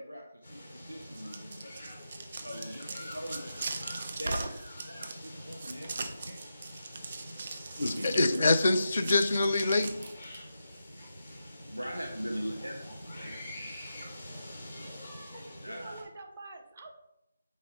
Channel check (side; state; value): both; inverted; correlation -0.88